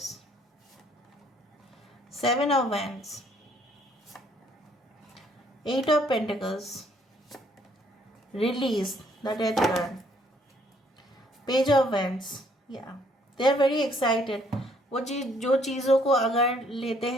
7 of wands, 8 of Pentacles, release, the Death card, Page of Wands. Yeah, they are very excited. वो जो चीज़ों को अगर लेते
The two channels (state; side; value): normal; both; correlation 0.65